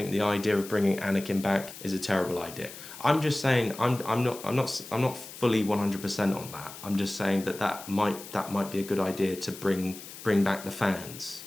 the idea of bringing Anakin back is a terrible idea? I'm just saying, I'm not fully 100% on that. I'm just saying that might be a good idea to bring back the fans,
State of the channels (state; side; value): noise; left; hiss, 14 dB below the sound